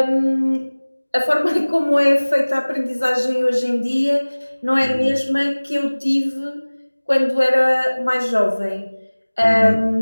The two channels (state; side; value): inverted; both; correlation -1.00